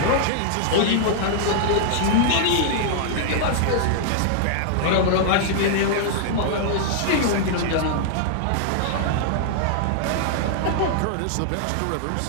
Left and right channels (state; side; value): different; both; correlation -0.01